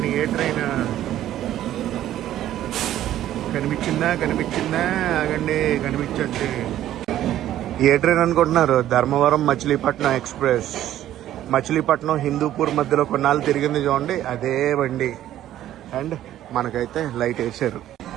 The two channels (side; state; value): left; quieter; 12.6 dB